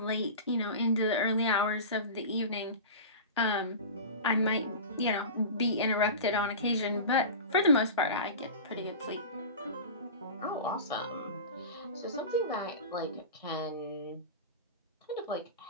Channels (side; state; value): both; inverted; correlation -0.30